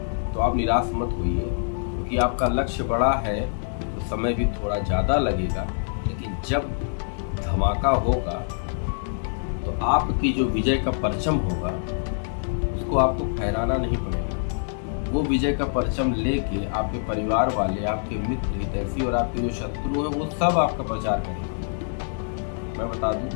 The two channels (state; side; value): silent; right; digital silence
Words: तो आप निराश मत होइए, क्योंकि आपका लक्ष्य बड़ा है तो समय भी थोड़ा ज़्यादा लगेगा, लेकिन जब धमाका होगा तो आपकी जो विजय का परचम होगा उसको आपको फहराना नहीं पड़ेगा। वो विजय का परचम लेके आपके परिवार वाले, आपके मित्र हितैषी और आपके जो शत्रु हैं वो सब आपका प्रचार करेंगे। मैं बता दूं